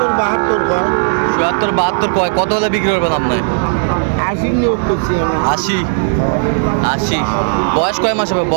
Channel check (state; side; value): silent; left; digital silence